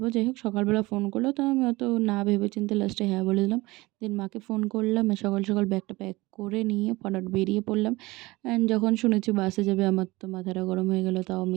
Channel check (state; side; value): quieter; left; 21.2 dB